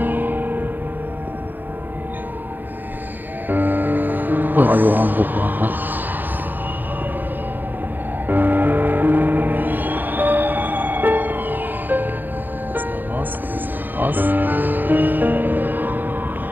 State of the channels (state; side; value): late; left; 0.088 ms